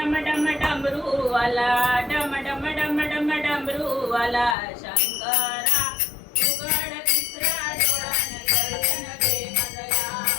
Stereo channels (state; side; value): drops out; right; at 4.5 s